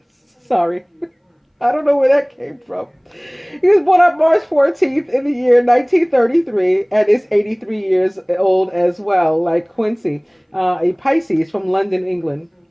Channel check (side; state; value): both; identical; correlation 1.00